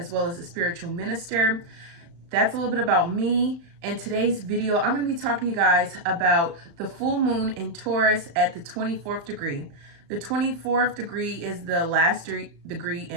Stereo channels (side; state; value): left; late; 35 ms